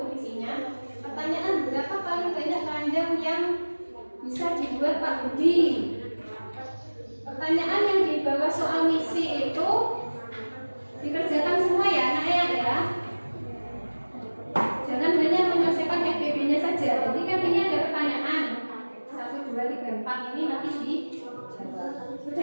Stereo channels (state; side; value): inverted; both; correlation -1.00